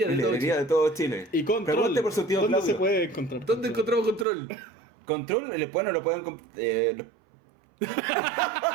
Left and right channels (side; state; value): left; drops out; at 4.2 s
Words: de En todo librería Chile. de todo Chile. Y Control. Pregunte por su tío ¿Dónde Claudio. se puede encontrar? ¿Dónde encontramos Control? Control, bueno, lo pueden...